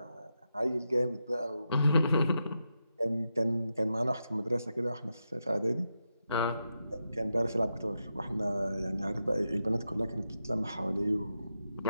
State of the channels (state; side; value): inverted; both; correlation -0.87